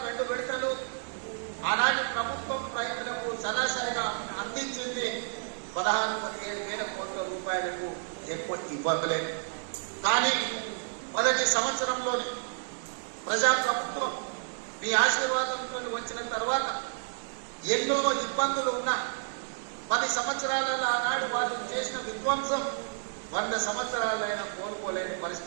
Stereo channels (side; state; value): left; silent; 57 dB below the other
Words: 2 విడతలు ఆనాటి ప్రభుత్వం రైతులకు సరాసరిగా అందించింది 16,000 కోట్ల రూపాయలకు ఎక్కువ ఇవ్వలేదు. కానీ మొదటి సంవత్సరంలోని ప్రజాప్రభుత్వం మీ ఆశీర్వాదంతో వచ్చిన తర్వాత ఎన్నో ఇబ్బందులు ఉన్నా 10 సంవత్సరాలలో ఆనాడు వాళ్ళు చేసిన విధ్వంసం 100 సంవత్సరాలైనా కోలుకోలేని